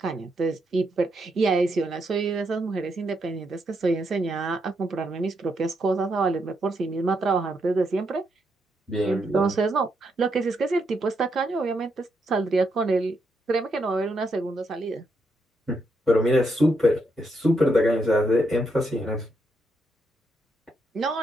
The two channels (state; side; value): normal; both; correlation 0.79